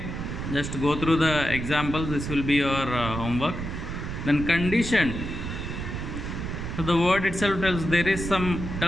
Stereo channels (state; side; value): noise; right; rumble, 5 dB below the sound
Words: just go through the examples. This will be your homework. Then conditioned. So the word itself tells there is some